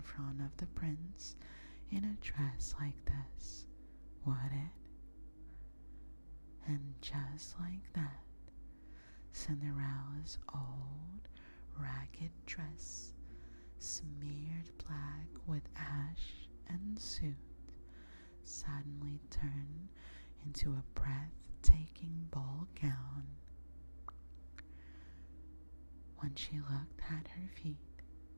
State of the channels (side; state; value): both; inverted; correlation -1.00